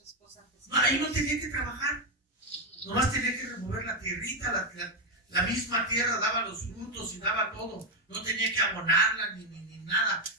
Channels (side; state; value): both; normal; correlation 0.06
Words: esposa antes. No, ahí no tenía que trabajar, nomás tenía que remover la tierrita, La misma tierra daba los frutos y daba todo. No tenía que abonarla ni nada.